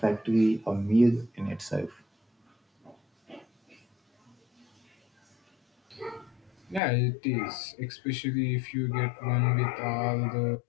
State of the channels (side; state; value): right; drops out; at 6.8 s